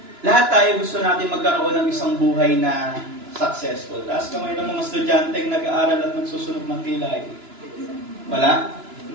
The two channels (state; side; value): late; left; 2.9 ms